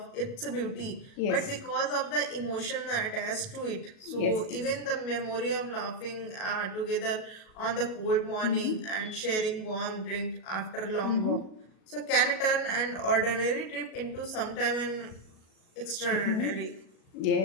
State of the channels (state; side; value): late; right; 37 ms